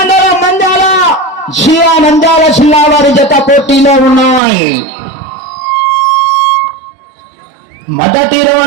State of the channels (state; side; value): drops out; left; at 4.4 s